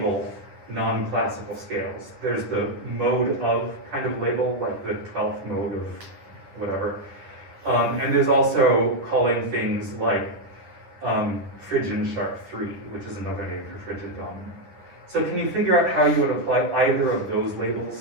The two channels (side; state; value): left; late; 10 ms